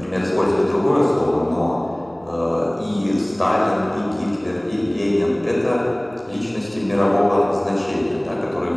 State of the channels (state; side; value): noise; right; hum, 29 dB below the sound